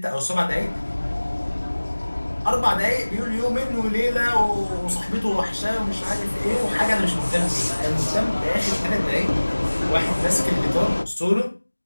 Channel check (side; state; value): both; inverted; correlation -1.00